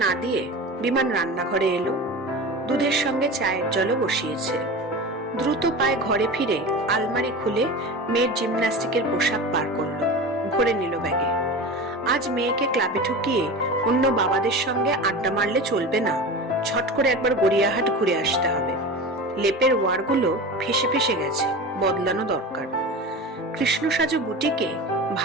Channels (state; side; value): normal; both; correlation 0.30